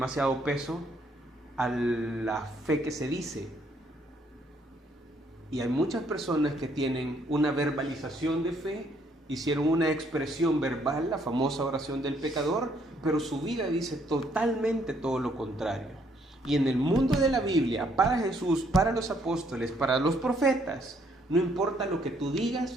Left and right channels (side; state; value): both; normal; correlation 0.68